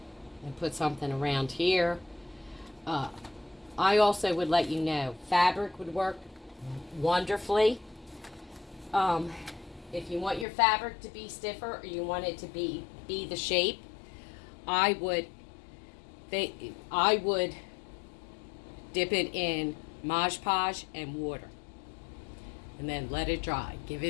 and put something around here. I also would let you know, fabric would work wonderfully. If you want your fabric to be stiffer or you want it to be the shape, I would dip it in Mod Podge and water. And then let it dry. Give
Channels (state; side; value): drops out; right; at 10.5 s